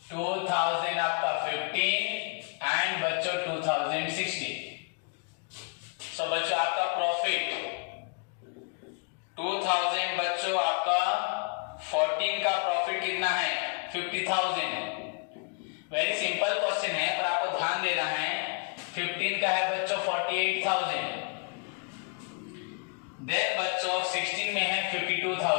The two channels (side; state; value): right; quieter; 38.5 dB